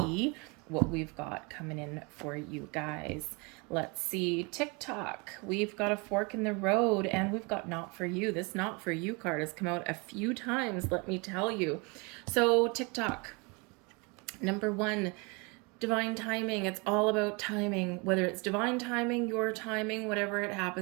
what we've got coming in for you guys. Let's see, TikTok. We've got a fork in the road and we've got not for you. This not for you card has come out a few times, let me tell you. So TikTok, number one, divine timing. It's all about timing, whether it's divine timing, your timing, whatever it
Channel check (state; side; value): quieter; left; 29.5 dB